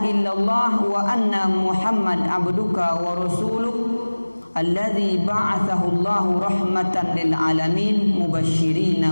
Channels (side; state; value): both; inverted; correlation -1.00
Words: illallah wa anna Muhammad abduka wa rasuluh alladzi ba'athahu Allahu rahmatan lil alamin mubasysyirin